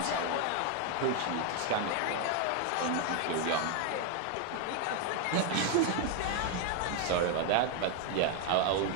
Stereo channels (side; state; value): both; different; correlation 0.01